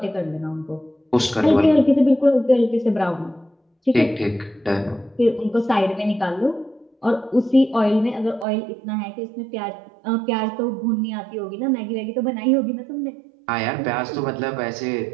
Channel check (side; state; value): left; drops out; at 8.5 s